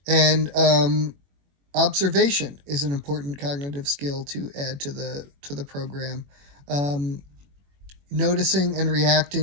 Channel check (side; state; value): left; late; 21 ms